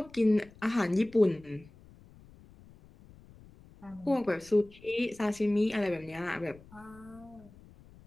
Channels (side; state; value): left; noise; rumble, 23 dB below the sound